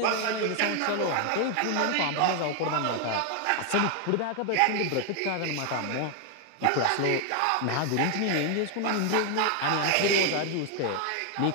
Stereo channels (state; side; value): different; both; correlation 0.00